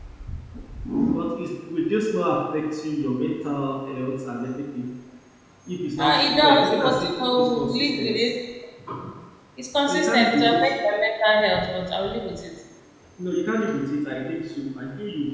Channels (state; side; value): identical; both; correlation 1.00